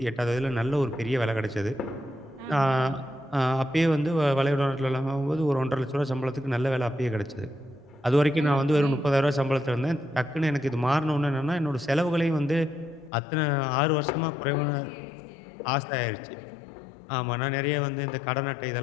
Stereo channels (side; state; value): right; drops out; at 13.1 s